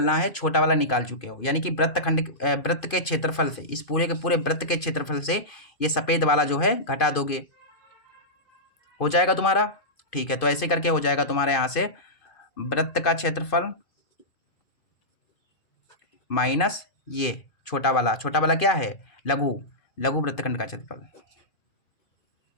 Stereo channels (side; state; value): right; late; 2.5 ms